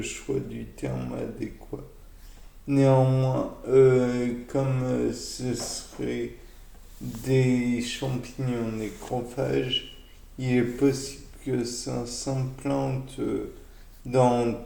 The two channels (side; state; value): both; identical; correlation 1.00